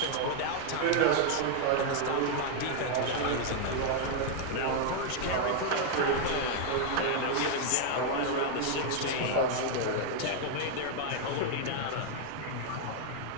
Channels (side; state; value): both; different; correlation 0.00